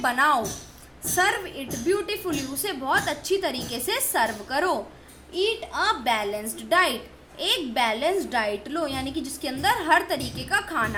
Serve it beautifully. उसे बहुत अच्छी तरीके से सर्व करो। Eat a balanced diet. एक बैलेंस्ड डाइट लो यानी कि जिसके अंदर हर तरीके का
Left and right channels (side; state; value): both; identical; correlation 1.00